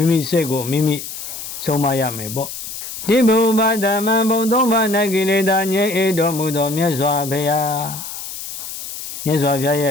ိမိစိတ်ကိုမိမိဆုံးမရမယ်ပေါ့ဒီဘုဗ္ဗဓမ္မဘုံသုံးပါး၌ကိလေသာငြိမ်းတော်မူသောမြတ်စွာဘုရားရဲ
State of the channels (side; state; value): left; noise; hiss, 9 dB below the sound